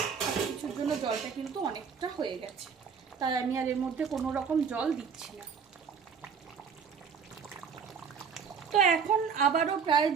সব কিছুর জন্য জলটা কিন্তু অনেকটা হয়ে গেছে, তাই আমি আর এর মধ্যে কোনো রকম জল দিচ্ছি না। তো এখন আবারও প্রায়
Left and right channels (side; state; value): left; quieter; 6.4 dB